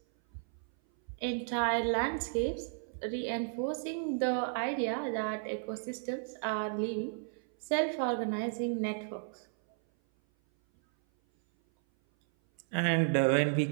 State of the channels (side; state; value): left; silent; 56 dB below the other